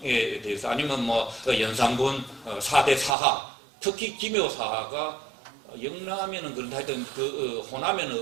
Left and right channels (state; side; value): drops out; left; at 3.1 s